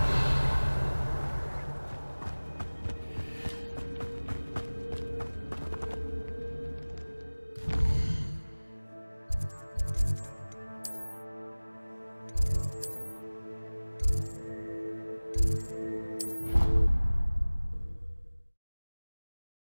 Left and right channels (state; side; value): inverted; both; correlation -1.00